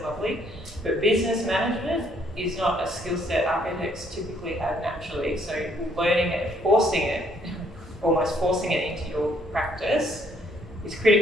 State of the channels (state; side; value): normal; both; correlation 0.67